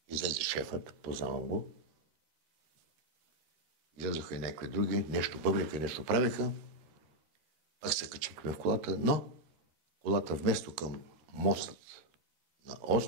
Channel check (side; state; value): left; late; 13 ms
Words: Излезе шефът, познавам го. Излезоха и някакви други, нещо бъбрика, нещо правиха. Пак се качихме в колата, но колата вместо към мостът на